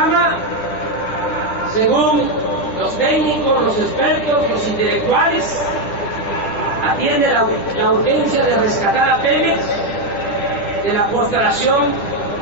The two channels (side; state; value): right; late; 10 ms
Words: según los técnicos, los expertos, los intelectuales, atiende la urgencia de rescatar a Pemex de la postración